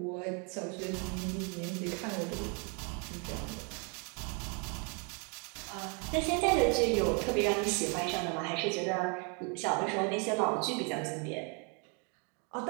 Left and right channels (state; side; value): quieter; left; 35.5 dB